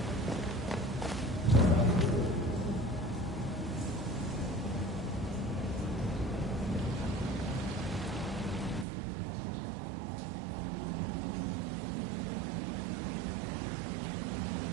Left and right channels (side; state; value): left; drops out; at 8.8 s